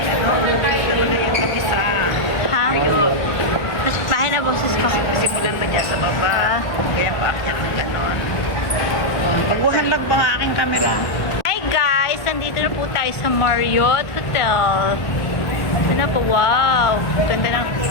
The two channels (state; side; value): late; right; 1.8 ms